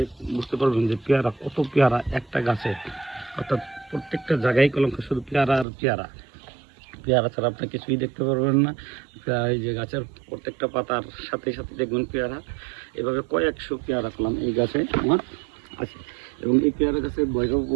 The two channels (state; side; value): drops out; left; at 5.7 s